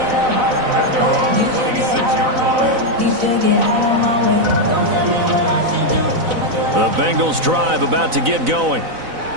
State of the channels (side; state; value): left; late; 4.0 ms